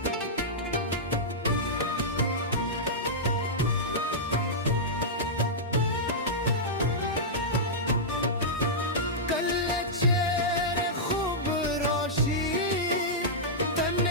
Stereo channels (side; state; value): both; normal; correlation -0.11